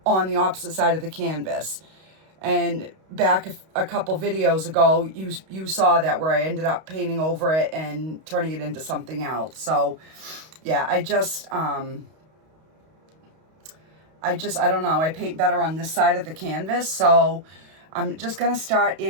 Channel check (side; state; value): left; late; 32 ms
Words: on the opposite side of the canvas. And back a couple videos ago, you saw that, where I ended up painting over it and turning it into something else. So yeah, I don't know, I paint better on this side of the canvas. So I'm just gonna start